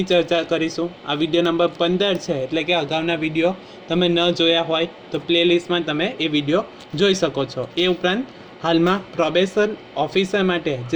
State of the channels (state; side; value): identical; both; correlation 1.00